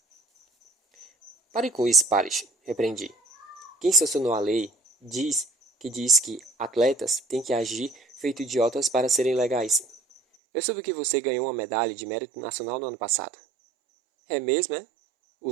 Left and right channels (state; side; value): drops out; left; at 10.2 s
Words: Pare com isso, Parrish, repreendi. Quem sancionou a lei diz que atletas têm que agir feito idiotas para serem legais. Eu soube que você ganhou uma medalha de mérito nacional no ano passado. É mesmo, é?